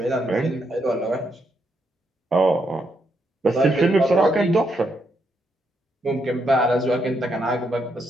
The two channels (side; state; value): both; normal; correlation 0.78